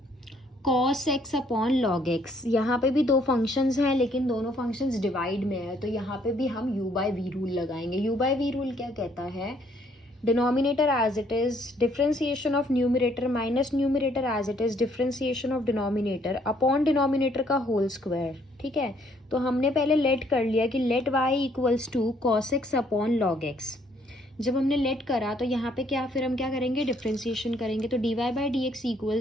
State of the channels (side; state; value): both; normal; correlation 0.66